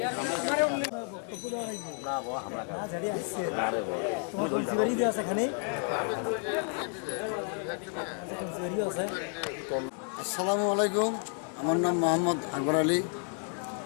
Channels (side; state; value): right; quieter; 39.7 dB